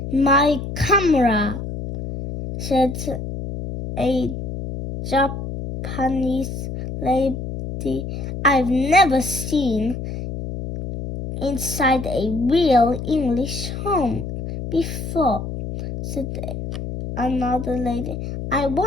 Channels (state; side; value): noise; left; hum, 6 dB below the sound